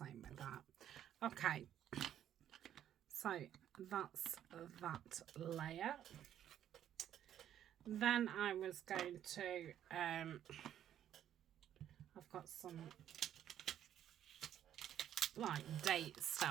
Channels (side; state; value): left; quieter; 10.7 dB